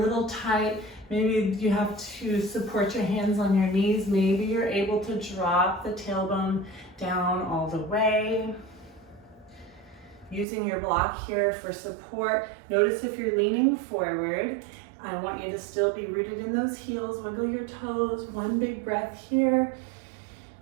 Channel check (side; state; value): left; drops out; at 10.5 s